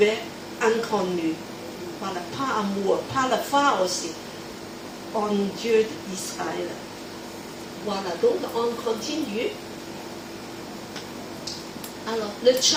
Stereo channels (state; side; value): identical; both; correlation 1.00